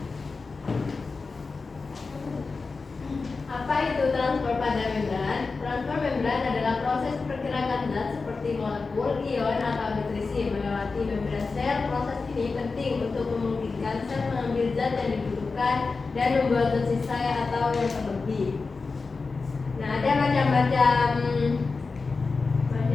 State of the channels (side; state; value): right; quieter; 4.2 dB